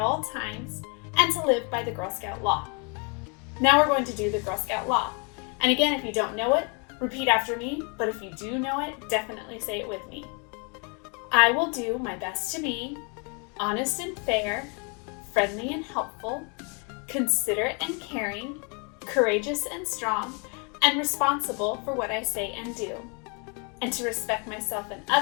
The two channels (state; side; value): quieter; right; 35.1 dB